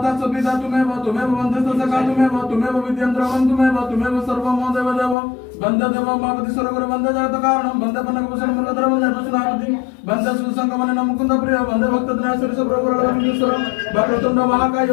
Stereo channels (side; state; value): right; drops out; at 5.2 s